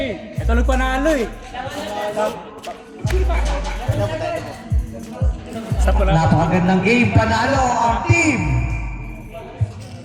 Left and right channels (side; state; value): both; identical; correlation 1.00